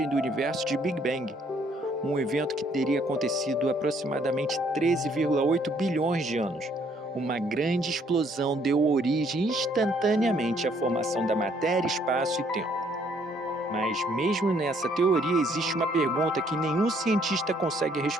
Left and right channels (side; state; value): both; normal; correlation 0.66